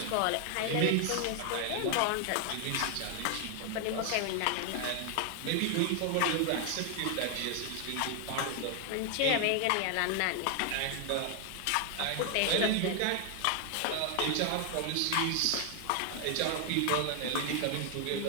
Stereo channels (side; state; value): both; different; correlation 0.00